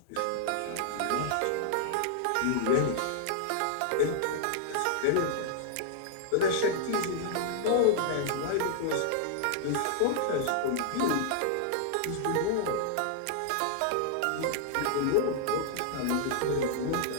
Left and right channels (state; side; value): different; both; correlation -0.01